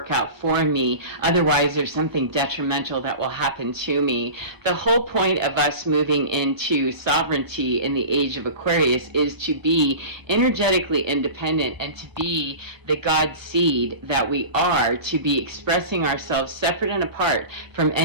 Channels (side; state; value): left; late; 1.0 ms